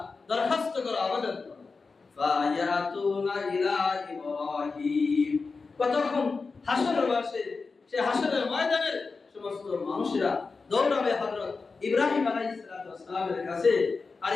দরখাস্ত করো, আবেদন করো। ফায়াতুনা ইলা ইব্রাহিম, কতক্ষণ হাসরের মাঠে, সে হাসরের ময়দানের সমস্ত মানুষেরা দৌড়াবে হযরত ইব্রাহিম আলাইহিস সালামের কাছে, আর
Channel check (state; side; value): quieter; right; 4.4 dB